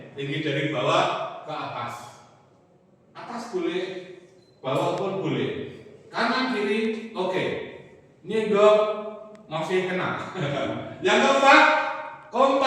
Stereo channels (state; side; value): identical; both; correlation 1.00